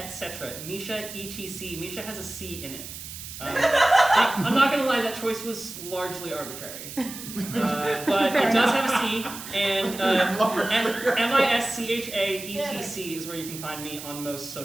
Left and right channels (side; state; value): right; noise; hiss, 11 dB below the sound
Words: Misha ETC. Misha has a C in it. I'm not gonna lie, that choice was largely arbitrary, but it does have a C, and MISCHAETC is where you can find me on most